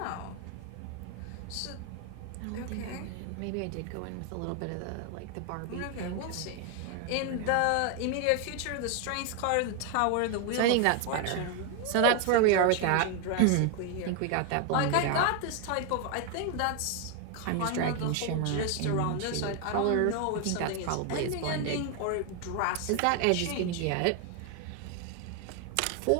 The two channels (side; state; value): both; different; correlation 0.01